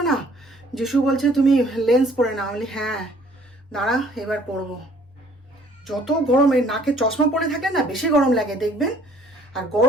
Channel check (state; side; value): normal; both; correlation 0.58